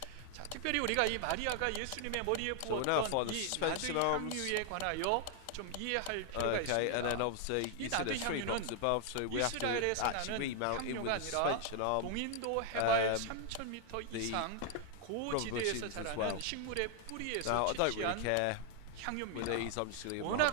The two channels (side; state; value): both; different; correlation 0.00